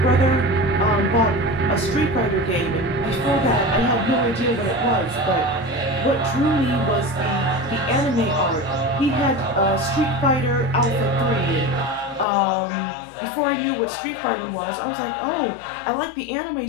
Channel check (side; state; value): right; drops out; at 12.2 s